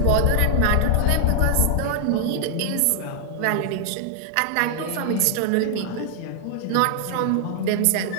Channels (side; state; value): both; different; correlation 0.00